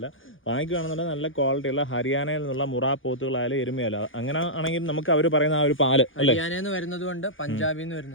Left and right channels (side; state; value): right; late; 0.58 ms